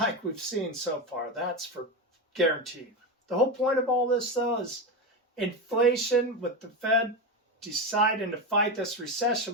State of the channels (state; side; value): normal; both; correlation 0.16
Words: we've seen so far. That's for guaranteed. The whole point of all this, though, is inflation with the Fed deciding to fight this